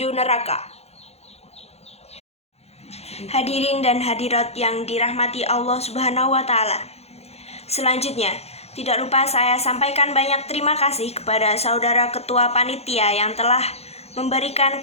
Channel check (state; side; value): late; right; 0.30 ms